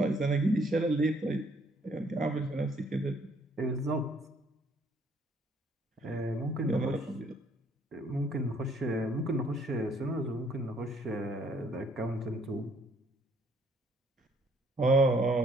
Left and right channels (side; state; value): both; normal; correlation 0.64